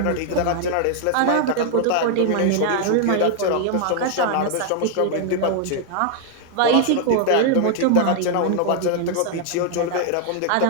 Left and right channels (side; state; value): both; different; correlation 0.00